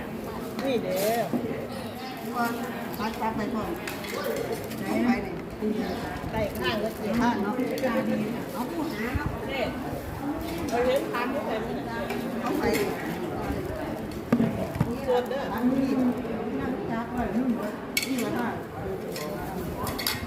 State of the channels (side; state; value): both; identical; correlation 1.00